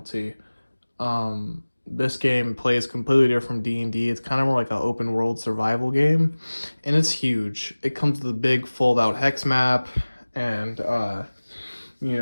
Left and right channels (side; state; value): both; inverted; correlation -1.00